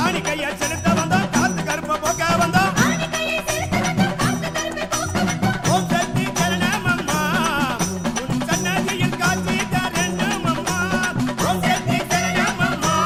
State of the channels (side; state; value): both; identical; correlation 1.00